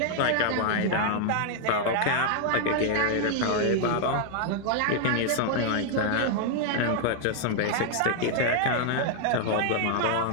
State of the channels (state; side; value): different; both; correlation -0.01